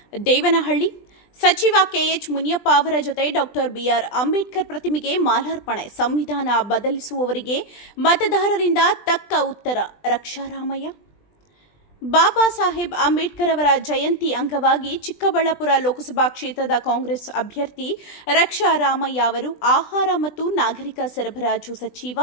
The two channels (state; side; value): late; right; 20 ms